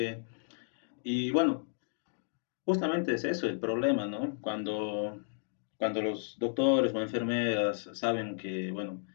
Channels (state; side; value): silent; right; digital silence